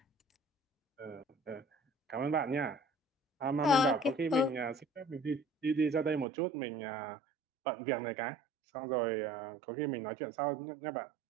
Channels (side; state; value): left; drops out; at 6.2 s